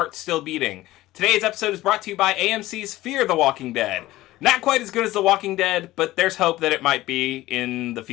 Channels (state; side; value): quieter; right; 16.8 dB